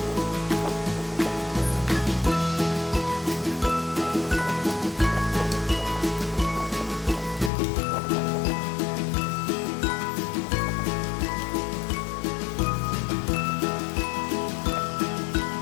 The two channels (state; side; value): drops out; right; at 7.5 s